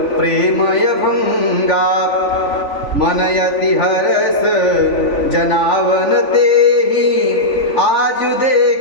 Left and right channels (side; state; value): right; late; 3.5 ms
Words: प्रेमय भंगा। मनयति हरस जनावन तेहि, आजु